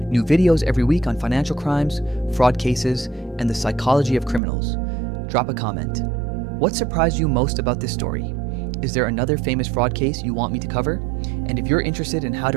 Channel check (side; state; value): left; drops out; at 4.4 s